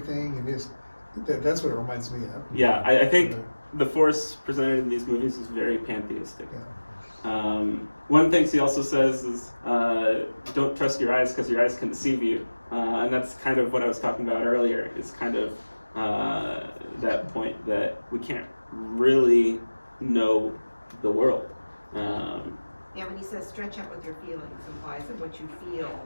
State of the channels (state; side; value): inverted; both; correlation -1.00